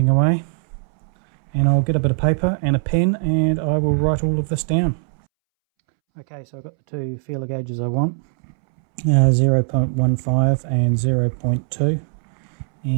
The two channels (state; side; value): silent; left; 66 dB below the other